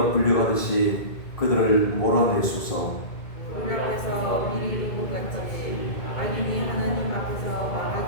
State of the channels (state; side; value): late; right; 2.1 ms